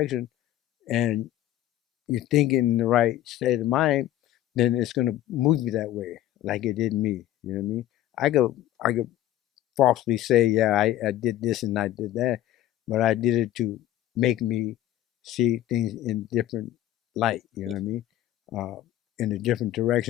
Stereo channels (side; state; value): right; quieter; 13.4 dB